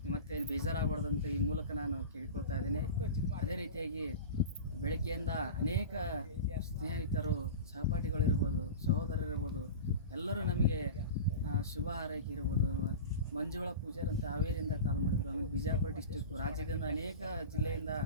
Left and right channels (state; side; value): inverted; both; correlation -0.31